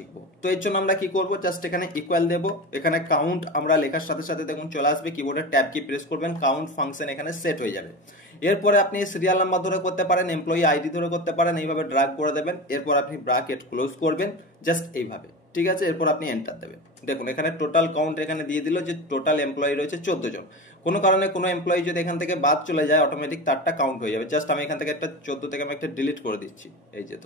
তো এর জন্য আমরা কি করব? জাস্ট এখানে ইকুয়াল দেব। এখানে কাউন্ট আমরা লেখার সাথে সাথে দেখুন চলে আসবে, কিবোর্ডের ট্যাব কি প্রেস করবেন, কাউন্ট ফাংশন এখানে সেট হয়ে যাবে। এরপরে আপনি সিরিয়াল নাম্বার ধরে করতে পারেন, এমপ্লয়ি আইডি ধরে করতে পারেন, এইভাবে ড্র্যাগ করে দেবেন। এরপর আপনি ব্র্যাকেট ক্লোজ করবেন, জাস্ট এইভাবে, ঠিক আছে। এরপর আপনি এন্টার দেবেন। দেখুন এখানে টোটাল কাউন্ট এখানে দিয়ে দিল যে টোটাল এমপ্লয়ি রয়েছে 14 জন। কোনো কারণে কোনো এমপ্লয়ি যদি এখান থেকে বাদ চলে যায়, অটোমেটিক তারটা কাউন্ট হয়ে যাবে। জাস্ট আমি এখান থেকে একটা 14 থেকে আমি একটা ডিলিট করে দিচ্ছি, এই যে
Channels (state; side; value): normal; both; correlation 0.27